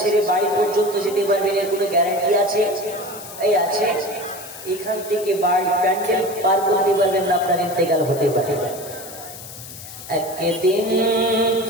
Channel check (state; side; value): noise; left; hiss, 14 dB below the sound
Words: সেরে বাড়ি পর্যন্ত যেতে পারবেন এর কোনো গ্যারান্টি আছে? এই আছে। এখান থেকে বাড়ি প্যান্ডেল পার করতে পারবেন না, আপনার ইন্তেকাল হতে পারে। একদিন